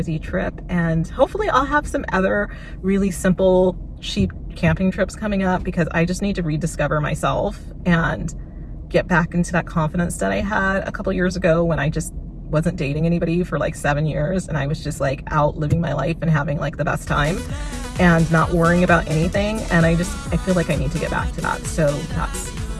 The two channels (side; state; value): both; identical; correlation 1.00